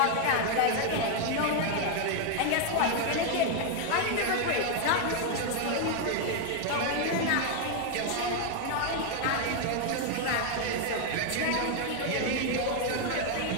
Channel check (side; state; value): both; different; correlation 0.01